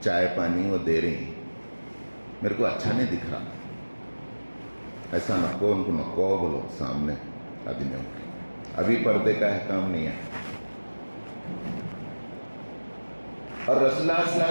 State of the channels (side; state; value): both; inverted; correlation -1.00